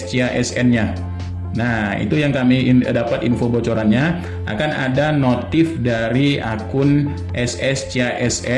Nah, itu yang kami dapat info bocorannya. Akan ada notif dari akun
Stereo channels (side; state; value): both; identical; correlation 1.00